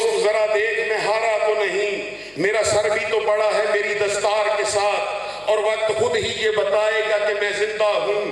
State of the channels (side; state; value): left; noise; hum, 30 dB below the sound